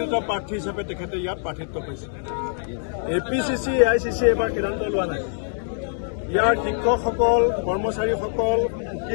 প্ৰাৰ্থী হিচাপে তেখেতে ইয়াত প্ৰাৰ্থিত্ব পাইছে। APCC AICC এবাৰ সিদ্ধান্ত লোৱা নাই। ইয়াৰ শিক্ষকসকল, কৰ্মচাৰীসকল,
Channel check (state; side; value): silent; right; digital silence